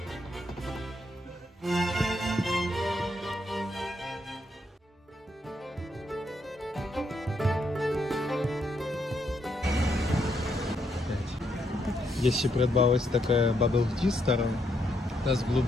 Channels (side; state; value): both; normal; correlation 0.77